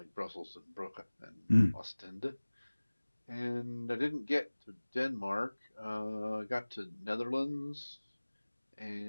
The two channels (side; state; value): both; inverted; correlation -1.00